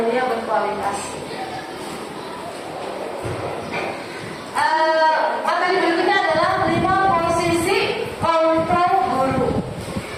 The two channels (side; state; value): both; identical; correlation 1.00